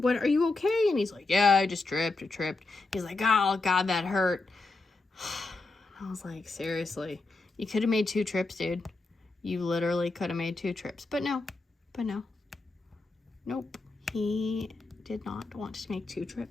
Are you okay? And he's like, yeah, I just tripped. He's like, oh God, that hurt. I was like, seriously, you could have made 2 trips, dude. You literally could have made 2 trips, but no. Nope, he did not want to make 2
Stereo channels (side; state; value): right; quieter; 3.4 dB